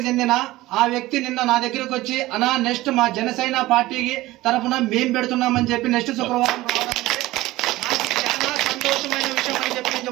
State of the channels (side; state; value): left; quieter; 17.8 dB